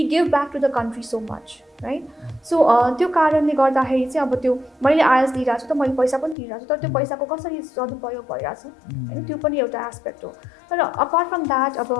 give back to the country so much right so त्यो कारणले गर्दाखेरि चाहिँ अब त्यो मैले आइएल्ट्स दिइरहेको छु त मैले पैसा पनि तिरिरहेको छु तर त्यो पैसाको कसरी सदुपयोग भइरहेछ होइन त्यो पनि एउटा एस्पेक्ट हो तर अपार्ट फ्रम द्याट अब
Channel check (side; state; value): right; drops out; at 6.4 s